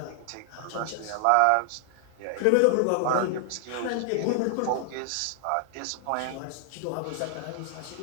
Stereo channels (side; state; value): both; different; correlation 0.00